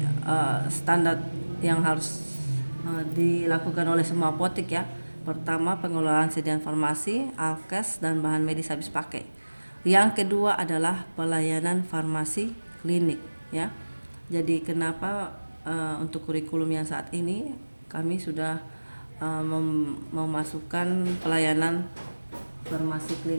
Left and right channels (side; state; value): both; inverted; correlation -1.00